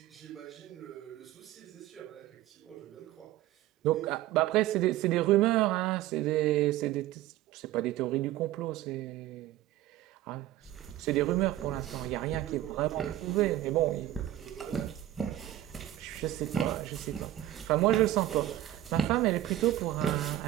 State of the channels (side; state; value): left; quieter; 14.1 dB